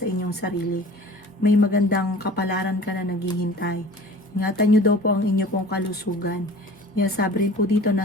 inyong sarili. May magandang kapalaran ka na naghihintay. Ingatan nyo daw po ang inyo pong kalusugan. Sinasabi rin po dito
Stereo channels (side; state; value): both; normal; correlation 0.44